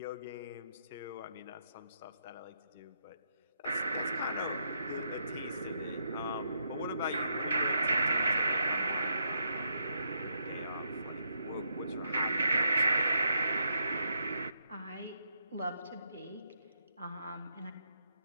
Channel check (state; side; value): inverted; both; correlation -0.78